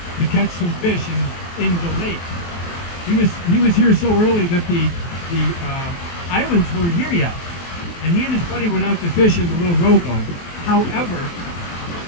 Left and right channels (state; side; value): late; right; 23 ms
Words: to catch some fish in the lake. He was here so early that the islands weren't here yet, and he and his buddy went out to fish in the little rowboat. However,